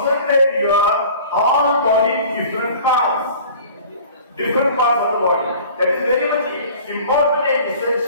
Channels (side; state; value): both; inverted; correlation -0.45